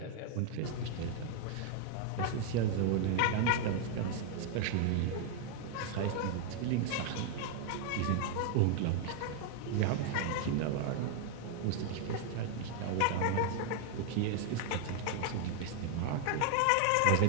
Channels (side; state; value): both; different; correlation 0.00